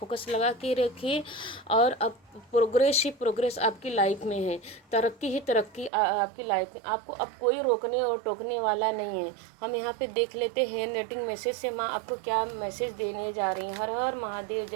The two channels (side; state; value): left; drops out; at 5.9 s